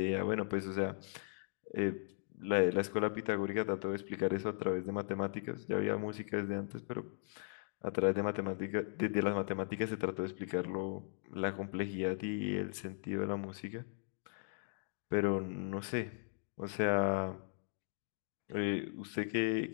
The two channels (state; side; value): silent; right; digital silence